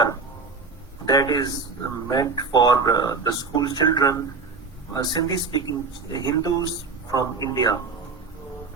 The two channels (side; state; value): left; quieter; 4.3 dB